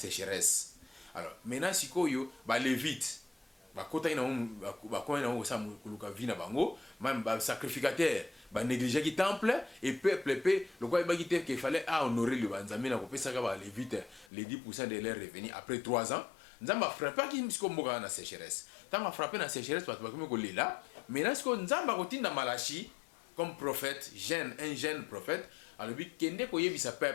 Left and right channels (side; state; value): right; drops out; at 14.2 s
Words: Alors maintenant sikoyo ba lévite bakota ina bakona na sa kuluka vina bango même ba sacrificateur ba négliger ki temple et peuple le quoi ba kité qu'il fallait honorer le Nzambe na ko pesa ka ba lévite les 10% de leurs revenus après 3 ans Nzamba frappé ki msiko mboka na sécheresse tant frappé na sécheresse parce que ko lela maintenant ce que Nzamba ko tinda Malachi comme prophète un jeune prophète alors bi kende ko yebisa